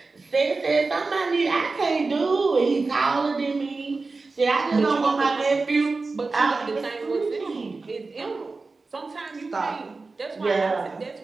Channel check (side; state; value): left; quieter; 3.8 dB